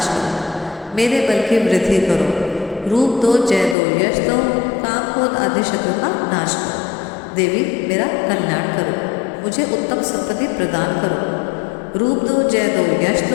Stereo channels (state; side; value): drops out; right; at 3.8 s